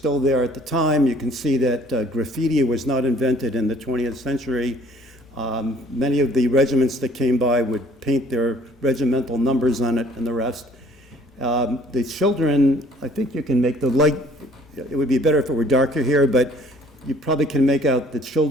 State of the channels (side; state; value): both; normal; correlation 0.57